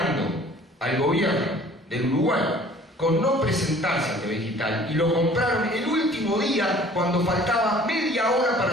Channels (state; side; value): normal; both; correlation 0.51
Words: al gobierno del Uruguay con no presentarse a TV digital y lo compraron el último día cuando faltaba media hora